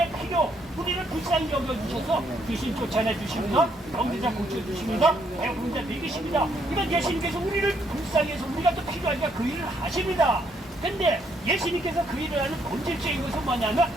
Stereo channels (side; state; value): both; normal; correlation 0.72